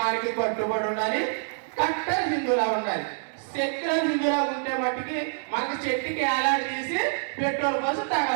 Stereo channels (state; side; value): silent; left; digital silence